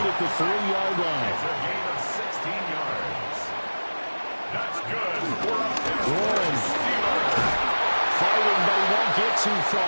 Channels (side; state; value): both; inverted; correlation -1.00